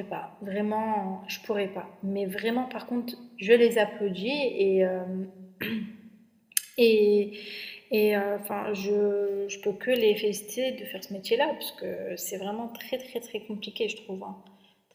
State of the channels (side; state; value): both; identical; correlation 1.00